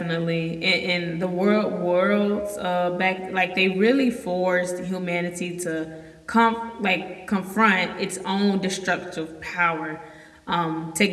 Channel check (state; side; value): identical; both; correlation 1.00